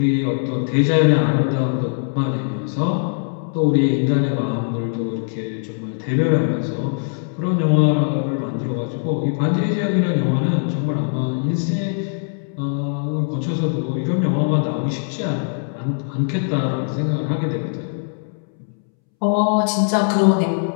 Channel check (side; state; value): right; silent; 65 dB below the other